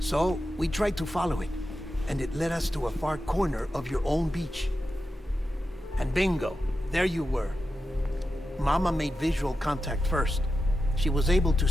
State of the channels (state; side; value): normal; both; correlation 0.90